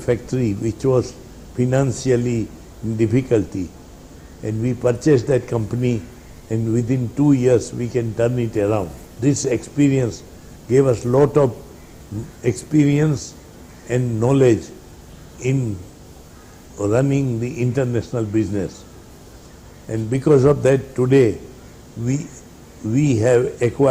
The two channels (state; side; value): identical; both; correlation 1.00